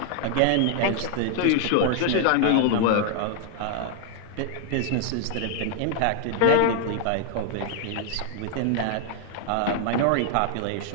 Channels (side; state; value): both; different; correlation 0.00